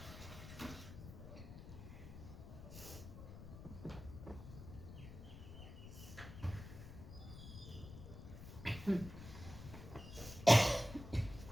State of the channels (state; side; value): noise; left; rumble, 12 dB below the sound